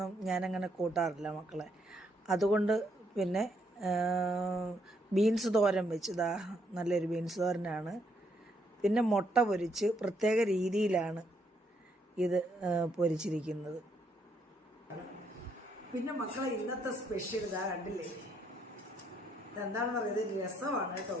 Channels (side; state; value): both; normal; correlation 0.74